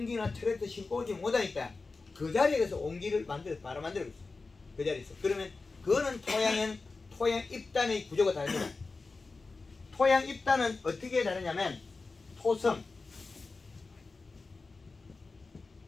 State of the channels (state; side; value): quieter; right; 3.9 dB